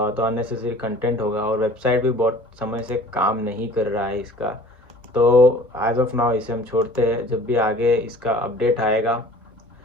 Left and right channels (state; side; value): normal; both; correlation 0.47